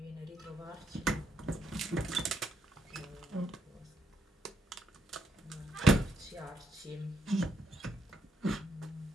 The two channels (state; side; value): normal; both; correlation 0.76